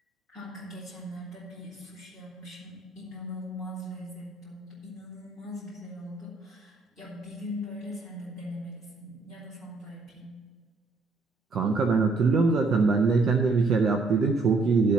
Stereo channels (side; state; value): left; quieter; 3.7 dB